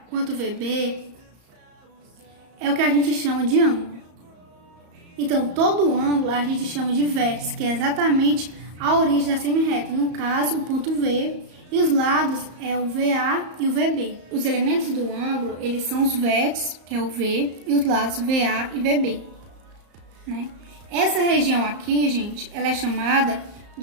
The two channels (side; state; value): left; late; 34 ms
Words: quanto VB, é o que a gente chama de ângulo. Então, todo ângulo a gente chama de vértice, que é exatamente a origem da semirreta. No caso, o ponto V, e os lados é o VA e o VB. Os elementos do ângulo, eles são os vértices, que é o V, e os lados VA e VB, né? Essa região aqui, gente, ela é chamada